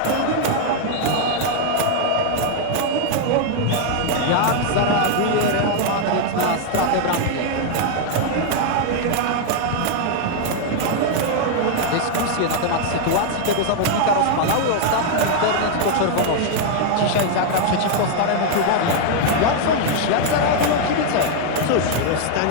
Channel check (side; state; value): both; different; correlation 0.00